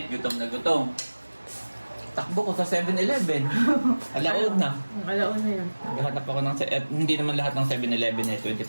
gutom na gutom. Takbo ko sa 7-Eleven. Alaon na. Alaon na yun. Naghahanap ako ng... hindi naman lahat ng 7-Eleven ay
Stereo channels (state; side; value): inverted; both; correlation -1.00